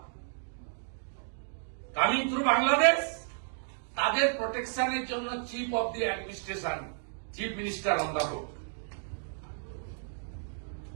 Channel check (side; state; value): left; silent; digital silence